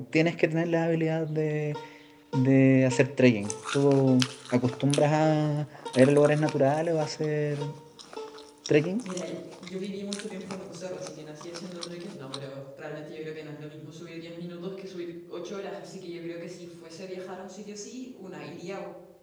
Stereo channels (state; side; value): identical; both; correlation 1.00